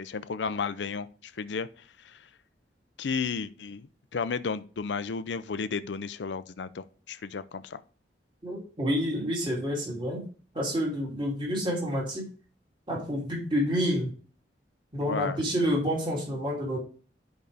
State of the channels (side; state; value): both; normal; correlation 0.45